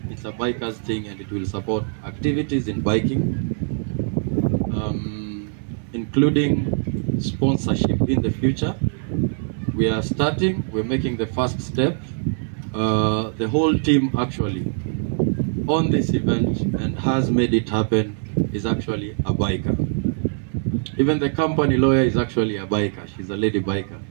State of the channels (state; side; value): silent; left; 60 dB below the other